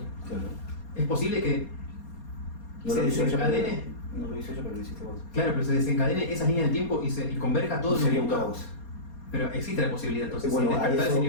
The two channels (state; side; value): late; right; 4.2 ms